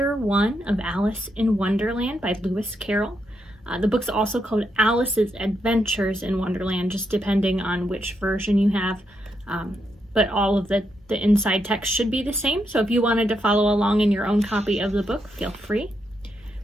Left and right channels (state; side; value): normal; both; correlation 0.81